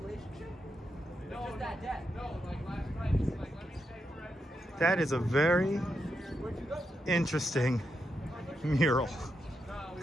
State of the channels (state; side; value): normal; both; correlation 0.84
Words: No, just that day. No, like last night. It's like, let me stay for everything. That is a very interesting mural.